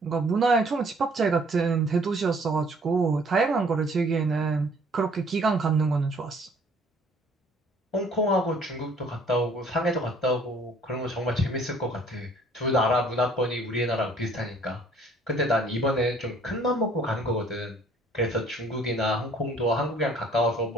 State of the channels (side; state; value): both; normal; correlation 0.57